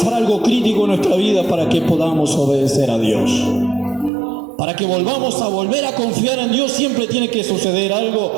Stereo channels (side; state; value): left; drops out; at 4.1 s